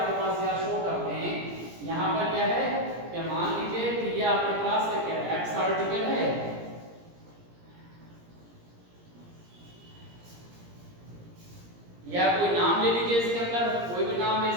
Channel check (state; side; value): late; left; 17 ms